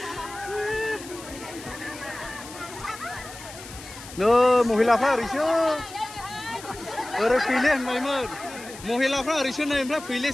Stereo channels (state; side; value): noise; left; hiss, 15 dB below the sound